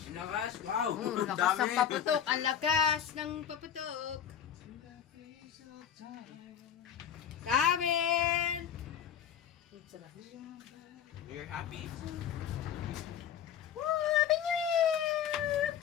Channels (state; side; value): quieter; right; 9.2 dB